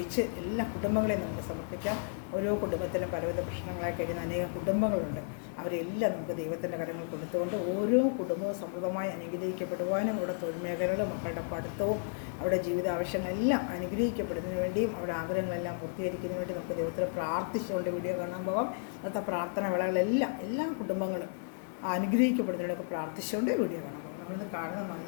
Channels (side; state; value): right; silent; 56 dB below the other